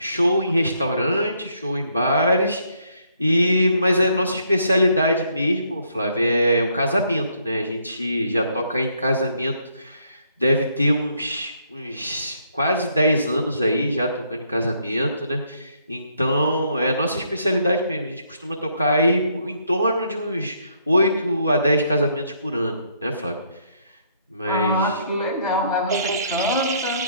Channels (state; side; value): inverted; both; correlation -0.70